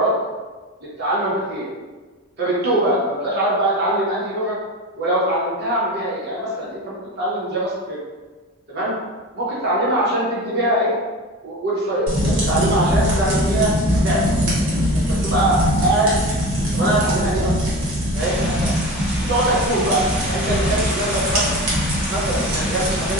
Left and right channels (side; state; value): both; normal; correlation 0.29